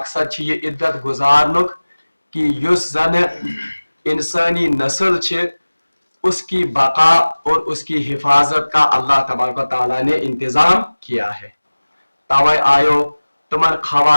چھِ یہِ عدت گزارنُک کہ یُس زن انسانی نسل چھِ اس کی بقا اور اس کی حفاظت کا اللہ تبارک و تعالیٰ نے انتظام کیا ہے. توے آیو تمن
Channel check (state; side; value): inverted; both; correlation -1.00